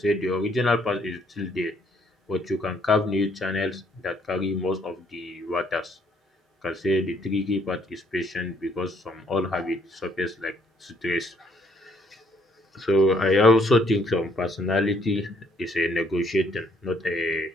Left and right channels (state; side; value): normal; both; correlation 0.67